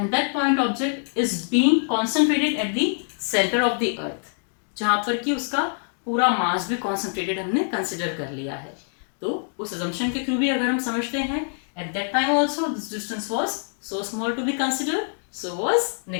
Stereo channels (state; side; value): silent; right; digital silence